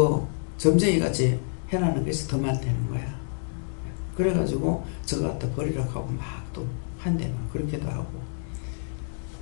점쟁이같이 해나는 것이 더 많다는 거야. 그래가지고 저거 갖다 버리라고 하고 막 또 한대 막 그렇게도 하고,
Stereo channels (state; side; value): silent; right; digital silence